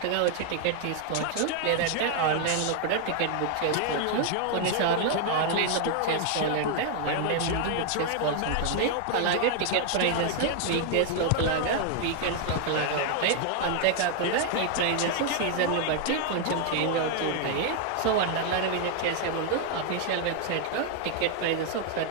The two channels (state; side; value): different; both; correlation 0.00